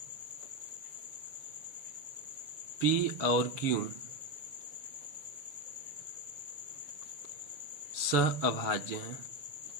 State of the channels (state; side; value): late; left; 6.9 ms